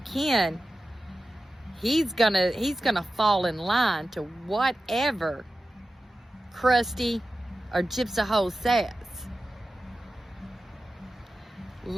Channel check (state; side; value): normal; both; correlation 0.94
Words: Ken, he's going to fall in line to whatever Krusty or Gypsv says.